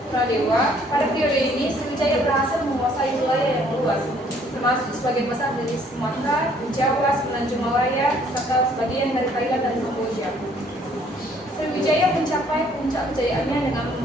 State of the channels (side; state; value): both; normal; correlation 0.61